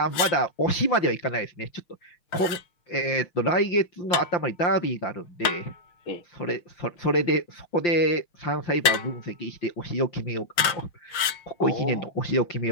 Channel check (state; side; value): late; right; 6.4 ms